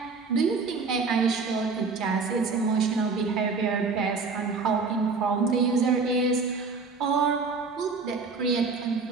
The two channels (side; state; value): left; quieter; 4.5 dB